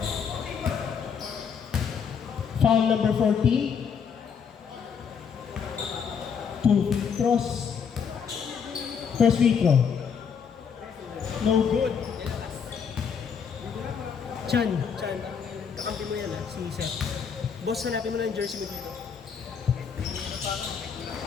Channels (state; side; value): quieter; right; 6.8 dB